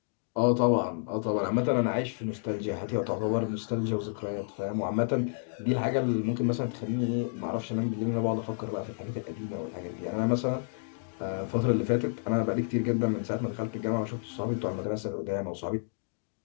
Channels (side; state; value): right; silent; digital silence